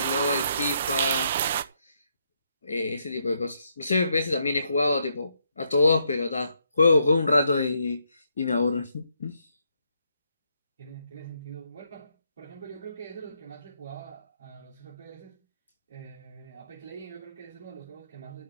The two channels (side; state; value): both; inverted; correlation -0.76